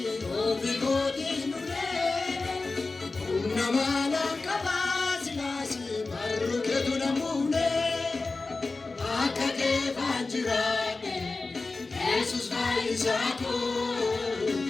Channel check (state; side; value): quieter; right; 3.6 dB